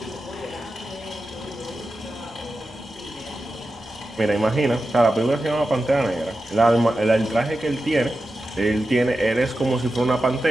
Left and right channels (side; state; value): both; normal; correlation 0.91